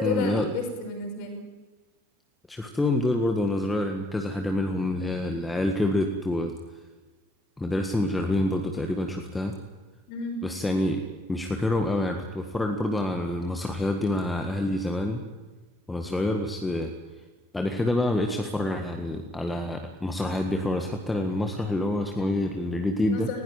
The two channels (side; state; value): both; normal; correlation 0.71